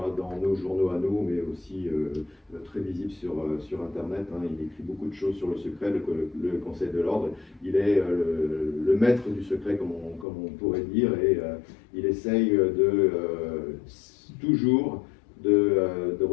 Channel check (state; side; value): drops out; right; at 10.2 s